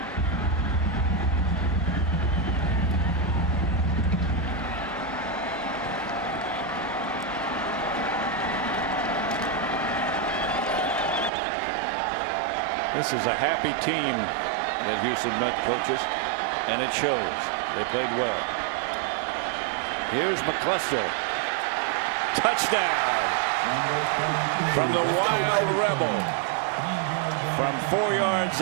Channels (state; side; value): drops out; left; at 11.3 s